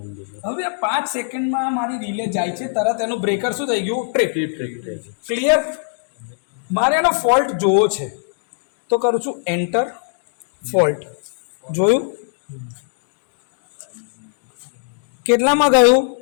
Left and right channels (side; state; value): right; silent; digital silence